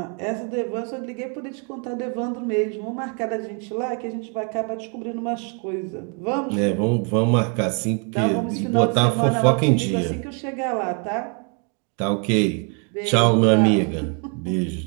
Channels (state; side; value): quieter; left; 38.2 dB